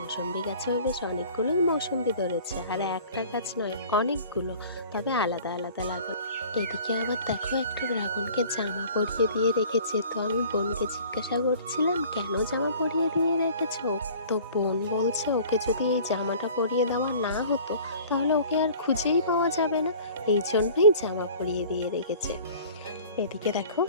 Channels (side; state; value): both; inverted; correlation -0.46